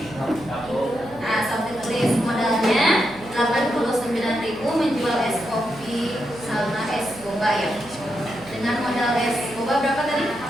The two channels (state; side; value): noise; right; hum, 19 dB below the sound